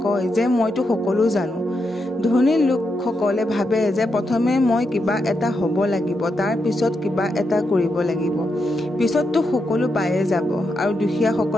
কয় যে মইতো সকলো জানো। ধনী লোকসকলে ভাবে যে প্ৰথমে মই কিবা এটা হ'ব লাগিব, তাৰ পিছত কিবা এটা কৰিব লাগিব, পিছততো সকলো পায়ে যাব। আৰু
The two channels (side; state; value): both; normal; correlation 0.84